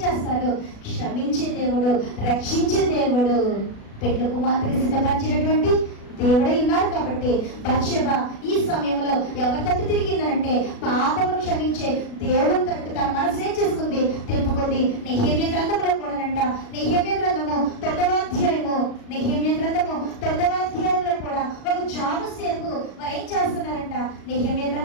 చేస్తారు? క్షమించే దేవుడు, రక్షించే దేవుడు, పెళ్లి కుమార్తెకి సిద్ధపరిచినటువంటి దేవుడే ఉన్నారు. కాబట్టి బత్షెబ ఈ సమయంలో ఎవరి తట్టు తిరిగిందనంటే పాపమును క్షమించే దేవుని తట్టు తన మనసు ఏం చేసుకుంది? తిప్పుకుంది. నెహెమ్యా గ్రంథంలో కూడానంట, నెహెమ్యా గ్రంథము 9వ అధ్యాయము, నెహెమ్యా గ్రంథము 9వ అధ్యాయంలో కూడా ఒక జాము సేపు వారు ఏం చేస్తున్నారంట? నెహెమ్యా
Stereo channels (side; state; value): right; late; 36 ms